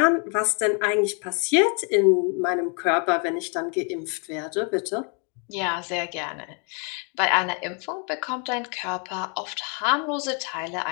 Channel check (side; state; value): right; quieter; 38.1 dB